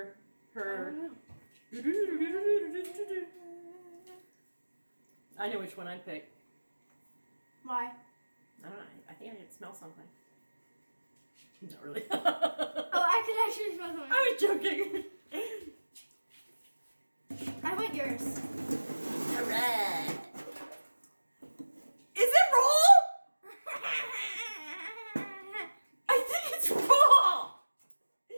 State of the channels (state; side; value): inverted; both; correlation -1.00